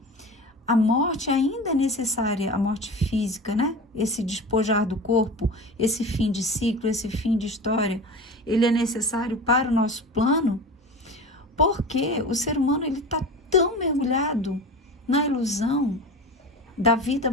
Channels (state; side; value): normal; both; correlation 0.32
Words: A morte ainda é necessária, a morte física, né? Esse despojar do corpo, esse fim de ciclo, esse fim de história, ele é necessário para o nosso plano, porque o ser humano ele está tão mergulhado na ilusão da vida